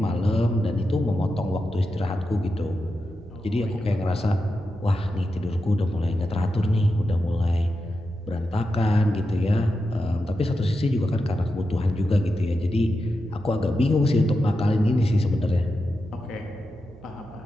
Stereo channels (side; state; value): right; noise; hum, 21 dB below the sound